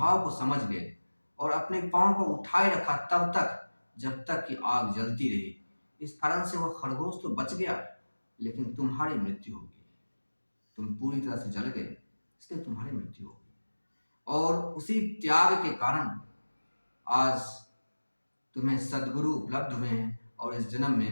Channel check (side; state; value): both; inverted; correlation -1.00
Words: को समझ गए और अपने पाँव को उठाए रखा तब तक जब तक कि आग जलती रही। इस कारण से वह खरगोश तो बच गया, लेकिन तुम्हारी मृत्यु हो गई। तुम पूरी तरह से जल गए, इसलिए तुम्हारी मृत्यु हो गई। और उसी त्याग के कारण आज तुम्हें सद्गुरु उपलब्ध हुए हैं और इस जन्म